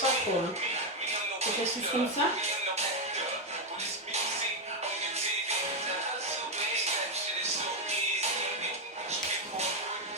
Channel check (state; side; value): normal; both; correlation 0.04